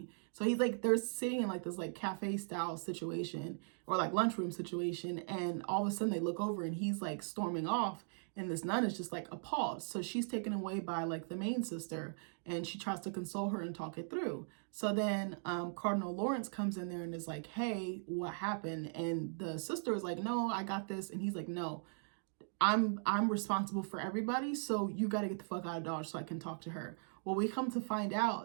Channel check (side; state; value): left; silent; digital silence